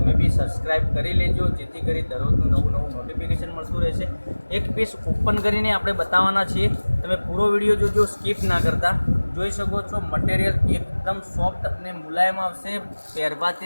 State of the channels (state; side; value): inverted; both; correlation -1.00